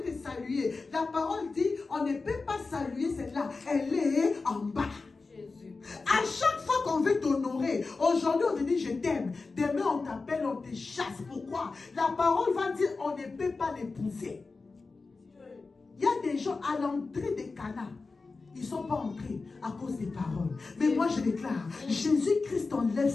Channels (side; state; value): right; quieter; 4.0 dB